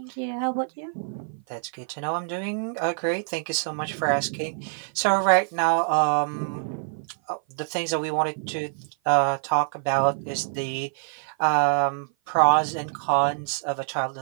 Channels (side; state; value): left; silent; 55 dB below the other